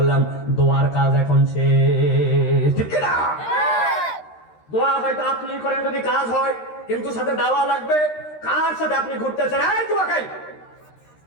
দোয়ার কাজ এখন শেষ, ঠিক না? দোয়া হয়তো আপনি করেন যদি কাজ হয়, কিন্তু সাথে দাওয়া লাগবে। কার সাথে আপনি ঘুরতেছেন? এই দোয়া খাই।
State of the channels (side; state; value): right; late; 13 ms